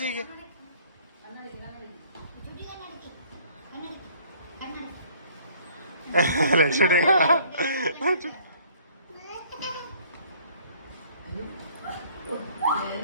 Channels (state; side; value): inverted; both; correlation -0.57